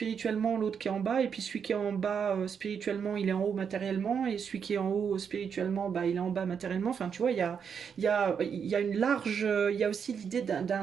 l'autre qui est en bas, et puis celui qui est en bas spirituellement, il est en haut matériellement, et celui qui est en haut spirituellement, bah, il est en bas matériellement. Enfin, tu vois, il y a une large, il y a aussi l'idée d'un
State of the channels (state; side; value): quieter; left; 7.0 dB